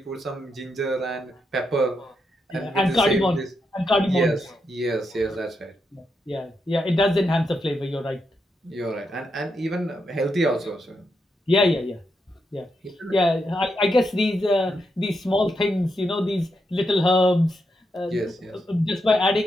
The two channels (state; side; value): normal; both; correlation 0.83